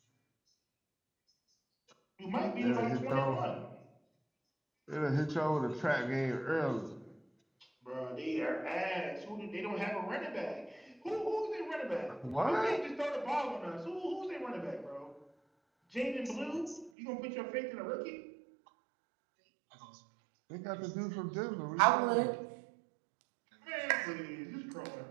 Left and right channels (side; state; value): left; drops out; at 16.9 s